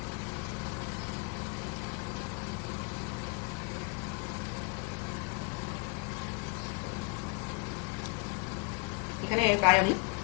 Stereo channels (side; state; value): right; quieter; 30.2 dB